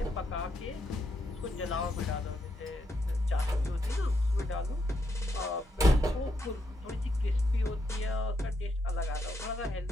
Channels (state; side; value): normal; both; correlation 0.79